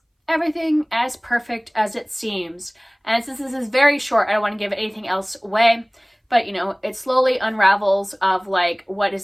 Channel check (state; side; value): identical; both; correlation 1.00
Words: everything as perfect as it seems? And since this is very short, I don't want to give anything else away, but it slowly unravels of like what